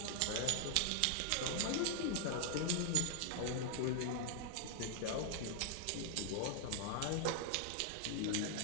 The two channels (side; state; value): both; different; correlation 0.00